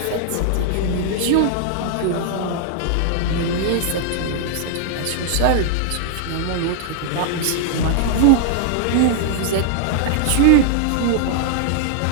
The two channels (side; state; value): both; different; correlation -0.01